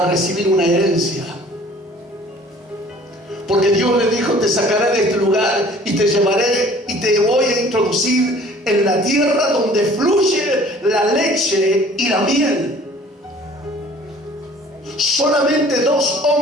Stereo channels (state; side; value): normal; both; correlation 0.51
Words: recibir una herencia. Porque Dios le dijo, te sacaré de este lugar y te llevaré y te voy a introducir en la tierra donde fluye la leche y la miel. Solamente 2